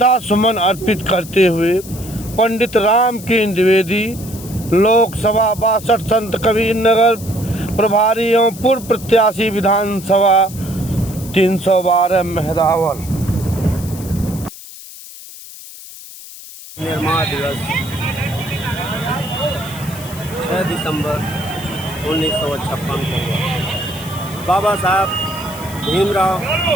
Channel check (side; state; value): left; noise; hiss, 15 dB below the sound